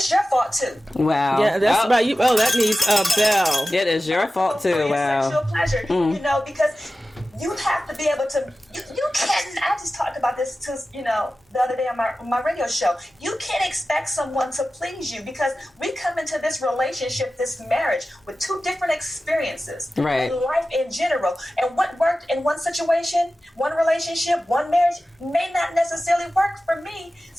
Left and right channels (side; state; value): both; normal; correlation 0.95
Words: your fault too. Wow. Yeah, that's about you. Oh, that needs a bell. It is your fault too. For Wow. Your sexual pleasure, because you have to be able to. You can't. I just talked about this to the other day on my radio show. You can't expect someone to please you, because we come into this relationship, this marriage, with two different experiences, right? In life in general, and what worked in one situation, one relationship, one marriage may not necessarily work for me.